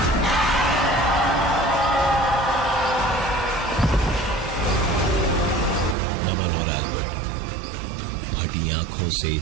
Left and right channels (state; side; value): drops out; left; at 6.0 s